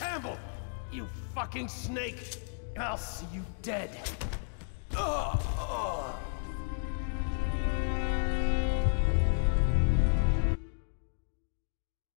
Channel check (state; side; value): silent; right; digital silence